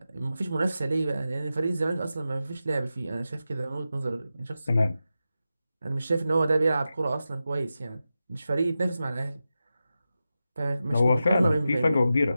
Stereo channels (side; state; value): both; inverted; correlation -0.92